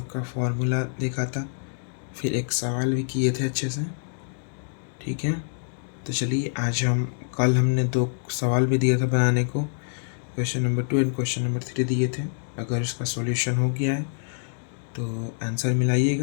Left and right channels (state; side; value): silent; right; digital silence